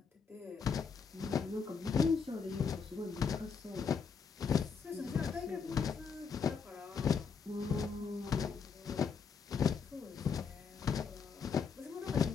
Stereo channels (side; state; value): right; quieter; 5.9 dB